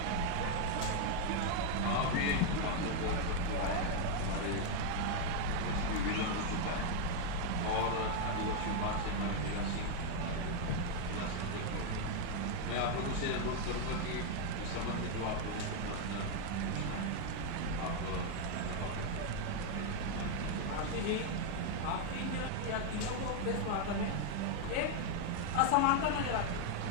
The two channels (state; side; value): different; both; correlation 0.01